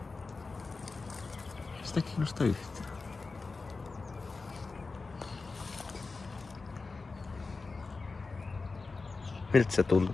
Sitä kiinnosta yhtään. Miltä se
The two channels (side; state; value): right; quieter; 4.0 dB